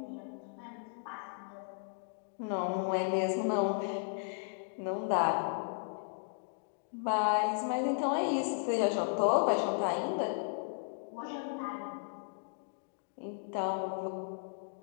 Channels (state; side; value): silent; right; digital silence